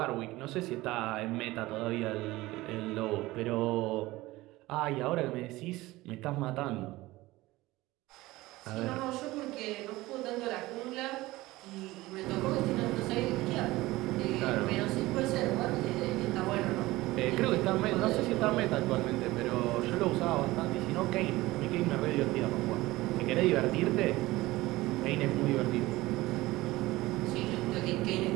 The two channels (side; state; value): left; quieter; 18.9 dB